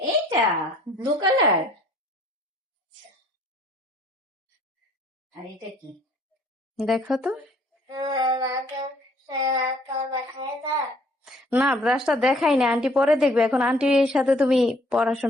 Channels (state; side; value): normal; both; correlation 0.60